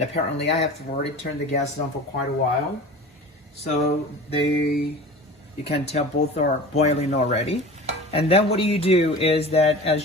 apparently I have already turned the gas on for quite a while. So you can tell both are boiling already. And then what you do is that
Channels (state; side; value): normal; both; correlation 0.37